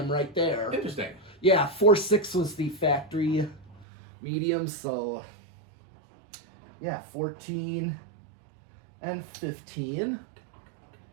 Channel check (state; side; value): drops out; left; at 3.9 s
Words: right there. Interesting. Yeah, 4.6 was the factory medium, so yeah, 14 and 15.